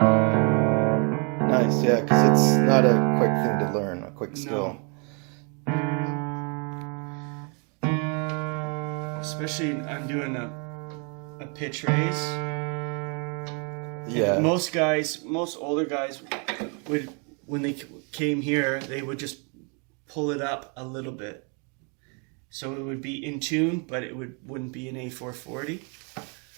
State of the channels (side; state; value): left; quieter; 35.6 dB